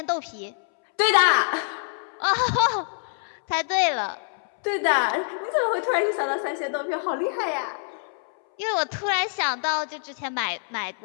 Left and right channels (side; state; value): right; silent; 61 dB below the other